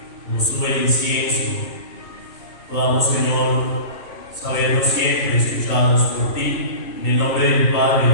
como sube el incienso, podamos, Señor, sabernos siempre escuchados por ti, en el nombre del Padre,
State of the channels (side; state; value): right; late; 2.6 ms